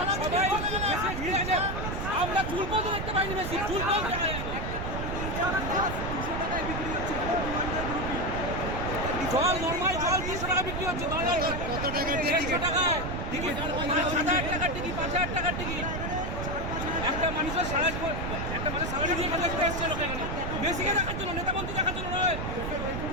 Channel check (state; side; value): noise; right; rumble, 4 dB below the sound